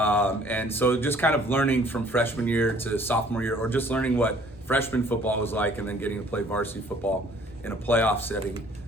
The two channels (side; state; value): both; normal; correlation 0.57